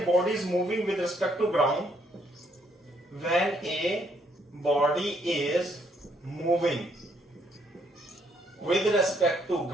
body is moving with respect to ground, when a body is moving with respect to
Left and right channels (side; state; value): both; normal; correlation 0.70